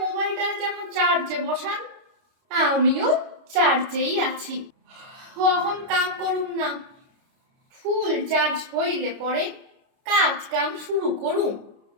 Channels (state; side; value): late; left; 29 ms